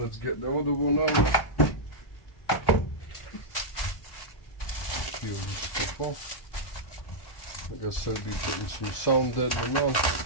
get the other one out. Peel this stuff off. I guess I'll be putting some sound deadening on.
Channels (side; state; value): right; late; 1.1 ms